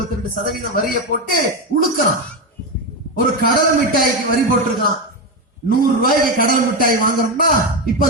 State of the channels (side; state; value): both; normal; correlation 0.12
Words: வரியை போட்டு உழுக்கிறான். ஒரு கடல் மிட்டாய்க்கு வரி போட்டிருக்கான். 100 ரூபாய்க்கு கடல் மிட்டாய் வாங்கணும்னா இப்ப